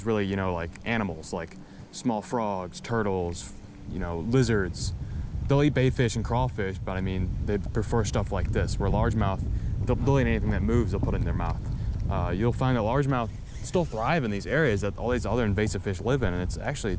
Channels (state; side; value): identical; both; correlation 1.00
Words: really, you know, like animals, like small frogs, turtles, you know, lizards. They'll eat baitfish and crawfish, but I mean, they prefer stuff like this, where largemouth, they'll eat anything that moves, they'll put it in their mouth. You'll find that largemouth still thrive in these areas that all these other invasive fish live in, and it's actually,